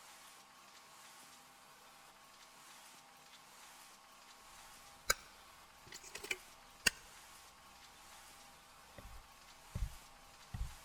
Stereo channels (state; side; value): identical; both; correlation 1.00